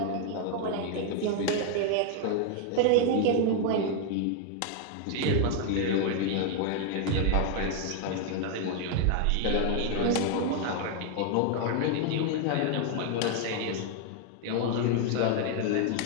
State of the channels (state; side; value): different; both; correlation 0.00